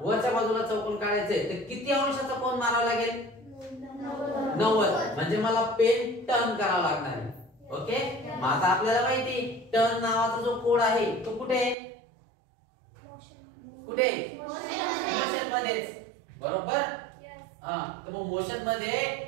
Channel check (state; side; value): drops out; left; at 11.8 s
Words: बाजूला चौकोन काढायचंय तर किती अंशाचा कोन मारावा लागेल? 90. म्हणजे मला पेन टर्न करावा लागणार आहे. ओके. मग आता आपल्याला माहिती टर्न नावाचा जो कोड आहे तो कुठे? कुठे? मोशन मध्येच बरोबर. हा तर मग मोशन मध्ये